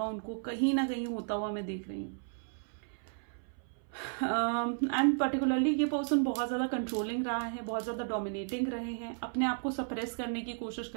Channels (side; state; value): left; silent; 55 dB below the other